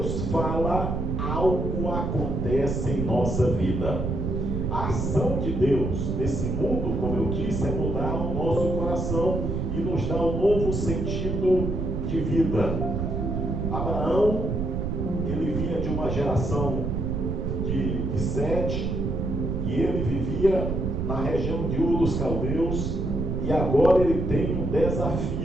fala, algo acontece em nossa vida. A ação de Deus nesse mundo, como eu disse, é mudar o nosso coração e nos dar um novo sentido de vida. Abraão, ele vinha de uma geração de Sete, e ele vivia na região de Ur dos Caldeus, e agora ele tem um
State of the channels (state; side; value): noise; right; rumble, 1 dB below the sound